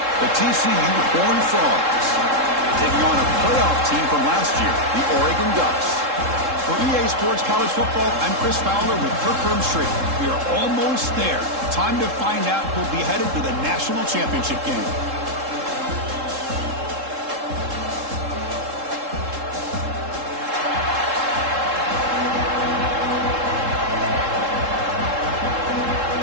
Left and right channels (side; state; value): left; late; 3.7 ms